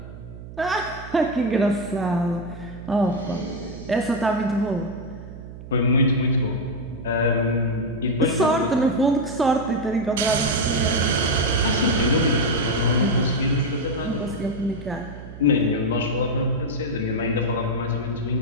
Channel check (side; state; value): right; noise; hum, 14 dB below the sound